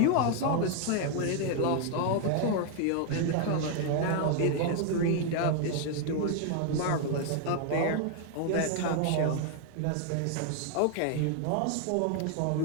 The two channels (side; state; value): both; different; correlation 0.00